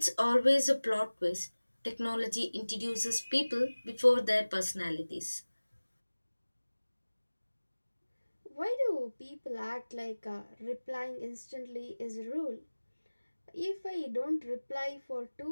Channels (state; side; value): inverted; both; correlation -1.00